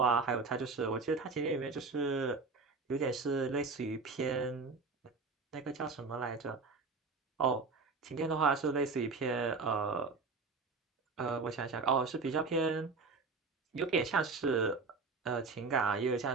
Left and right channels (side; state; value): left; quieter; 4.3 dB